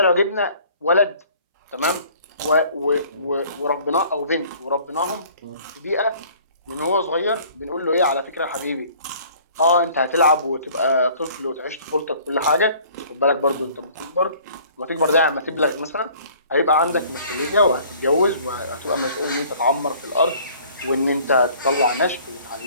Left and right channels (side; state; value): both; inverted; correlation -0.53